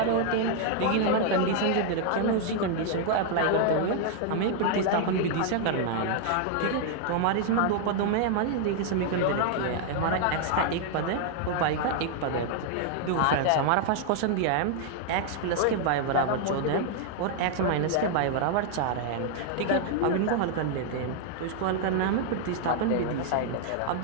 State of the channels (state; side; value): different; both; correlation 0.00